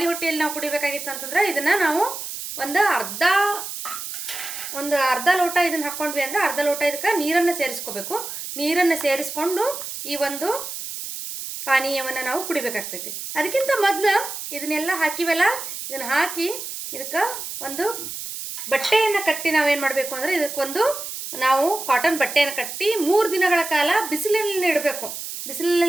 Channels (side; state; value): right; noise; hiss, 8 dB below the sound